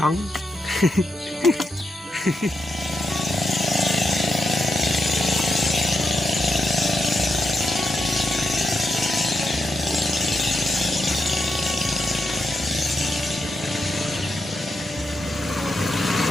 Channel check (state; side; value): normal; both; correlation 0.85